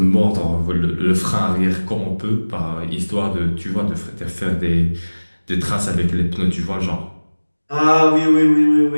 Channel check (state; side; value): inverted; both; correlation -1.00